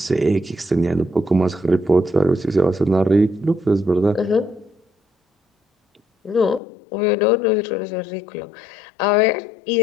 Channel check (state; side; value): drops out; right; at 6.6 s